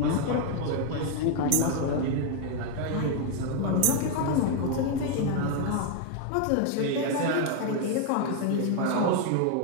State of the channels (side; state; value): both; different; correlation 0.00